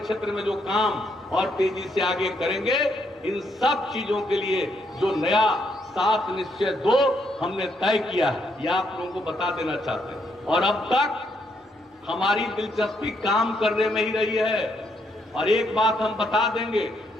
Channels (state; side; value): normal; both; correlation 0.75